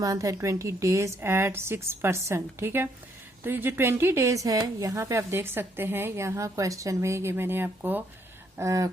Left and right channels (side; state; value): both; normal; correlation 0.71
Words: एंड 20 डेज एट 6%। ठीक है, तो ये जो 20 डेज है यहाँ पे आप देख सकते हैं, यहाँ क्वेश्चन में ये मैंने आपको